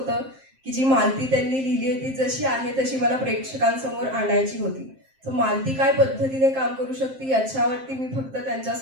की जी मालती त्यांनी लिहिली आहे ती जशी आहे तशी मला प्रेक्षकांसमोर आणायची होती. तर मालती काय पद्धतीने काम करू शकते याच्यावरती मी फक्त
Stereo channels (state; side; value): late; left; 7.6 ms